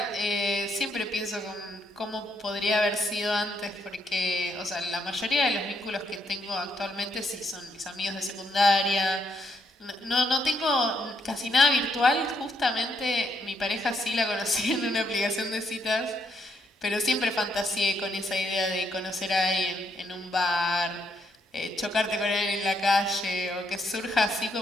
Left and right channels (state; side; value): normal; both; correlation 0.75